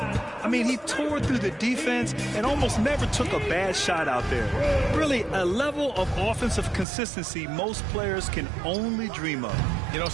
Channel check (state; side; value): drops out; left; at 6.9 s